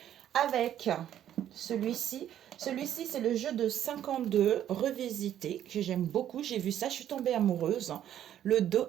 Avec celui-ci. Celui-ci, c'est le jeu de 52 revisité, que j'aime beaucoup. J'ai vu ça, je suis tombée amoureuse. Le dos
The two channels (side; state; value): left; quieter; 10.9 dB